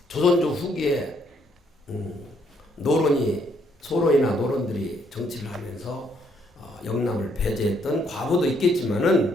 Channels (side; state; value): both; normal; correlation 0.70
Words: 조선조 후기에 소론이나 노론들이 정치를 하면서 영남을 배제했던 과거도